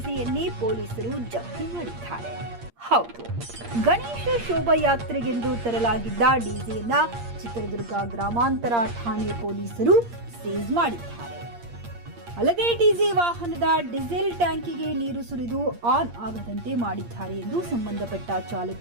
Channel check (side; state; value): left; late; 8.6 ms